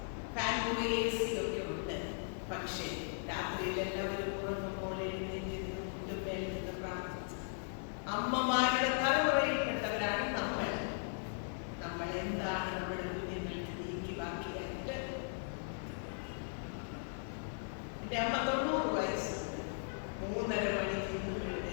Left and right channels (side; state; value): right; silent; digital silence